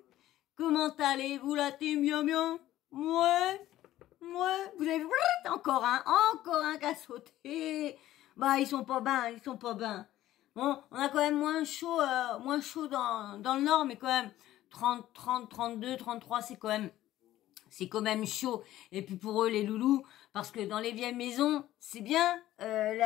Comment allez-vous la team, bien bien? Ouais, vous avez vu, encore un qui a sauté. Bah, ils sont pas bien. Bon, on a quand même moins chaud dans le nord, mais quand même 30, 32, 33, c'est quand même chaud. Et puis pour eux, les loulous, parce que dans les vieilles maisons, c'est bien,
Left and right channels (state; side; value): quieter; right; 14.2 dB